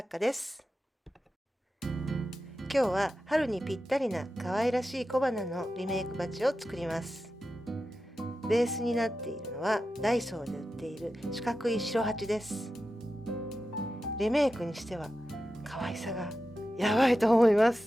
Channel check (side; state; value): both; normal; correlation 0.91